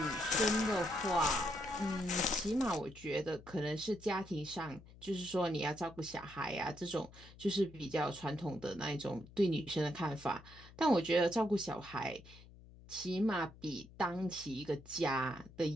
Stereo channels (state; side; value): noise; left; hum, 20 dB below the sound